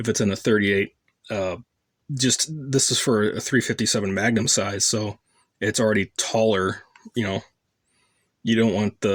it's in a 38. This is for a 357 Magnum size, so it's already taller. You don't want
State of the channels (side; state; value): both; identical; correlation 1.00